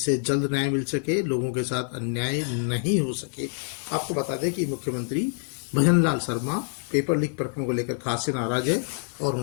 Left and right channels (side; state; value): right; silent; 56 dB below the other